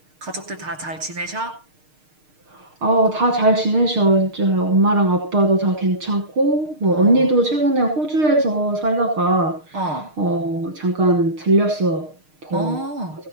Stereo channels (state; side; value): late; left; 6.5 ms